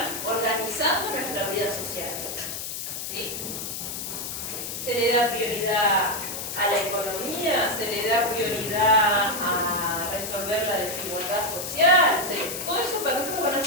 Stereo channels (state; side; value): noise; left; hiss, 6 dB below the sound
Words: organizando nuestra vida social, ¿sí? Se le da prioridad a la economía, se le da prioridad a resolver la desigualdad social, todo eso para nosotros van a